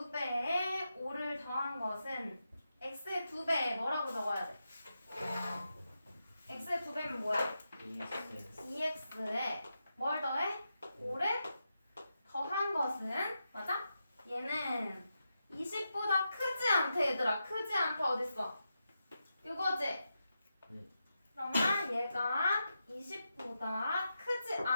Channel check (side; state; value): both; inverted; correlation -0.87